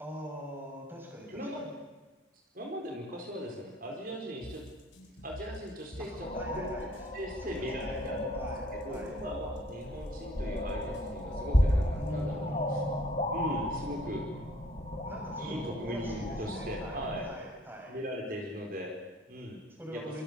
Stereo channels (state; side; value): normal; both; correlation 0.59